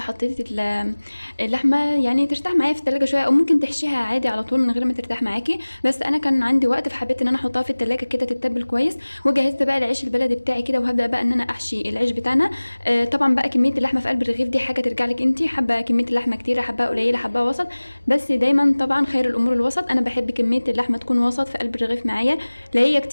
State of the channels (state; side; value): inverted; both; correlation -1.00